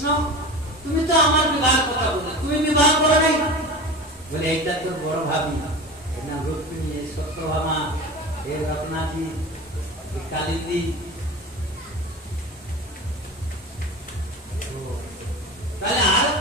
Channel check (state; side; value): normal; both; correlation 0.31